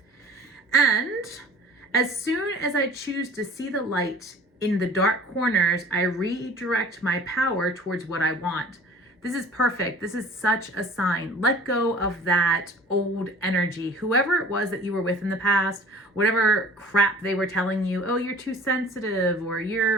And as soon as I choose to see the light in the dark corners, I redirect my power towards what I want. This is perfect. This is such a sign. Let go of that old energy. Whoever it was that you were with in the past, whatever crap they were telling you, oh, you're too sensitive, or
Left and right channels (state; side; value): normal; both; correlation 0.46